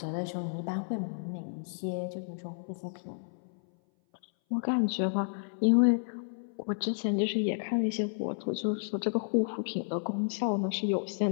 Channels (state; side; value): silent; right; 57 dB below the other